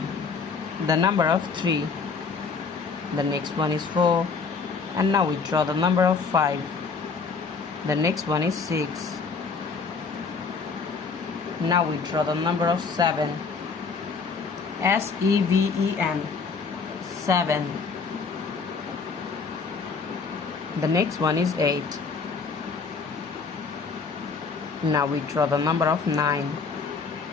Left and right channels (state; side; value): quieter; right; 5.0 dB